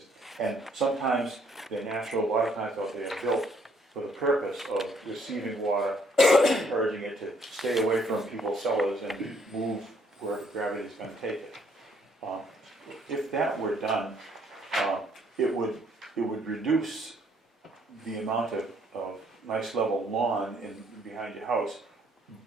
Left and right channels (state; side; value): normal; both; correlation 0.66